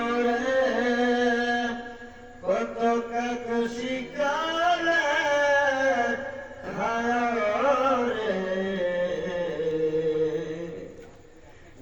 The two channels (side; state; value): both; identical; correlation 1.00